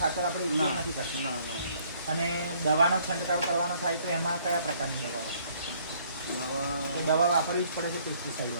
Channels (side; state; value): both; inverted; correlation -0.62